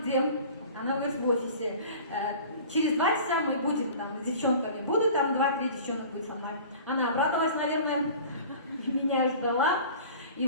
Она говорит: в офисе. Через 2 часа мы будем там с девчонками, буду там 2-3 девчонок будет со мной. Она обрадовалась, наверное, меня ждала. И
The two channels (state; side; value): inverted; both; correlation -0.42